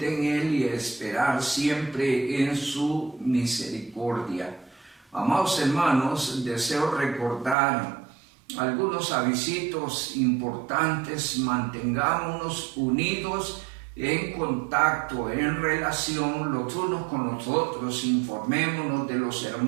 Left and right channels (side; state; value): left; drops out; at 7.6 s